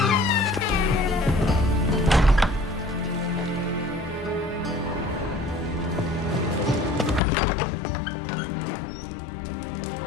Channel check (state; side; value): drops out; right; at 7.2 s